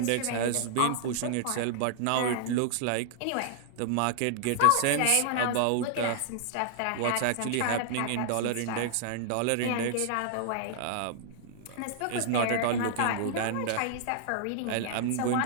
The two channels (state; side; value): different; both; correlation -0.01